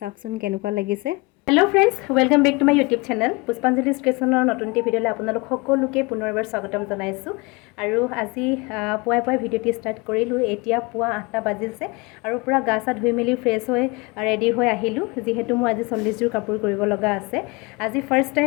কেনেকুৱা লাগিছে। Hello' friends, welcome back to my YouTube channel Pushpanjali ক্ৰিয়েশ্যনৰ নতুন ভিডিঅ'লৈ আপোনালোক সকলোকে পুনৰবাৰ স্বাগতম জনাইছোঁ। আৰু আজি পুৱাই ভিডিঅ'টি ষ্টাৰ্ট কৰিলোঁ। এতিয়া পুৱা 8টা বাজিছে আৰু পূৰা গা চা ধুই মেলি ফ্ৰেছ হৈ ৰেডি হৈ আহিলোঁ, যিহেতু মই আজি 40 যোৰ কাপোৰ কৰিব লগা আছে। আজি ফাৰ্ষ্ট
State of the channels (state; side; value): quieter; right; 26.2 dB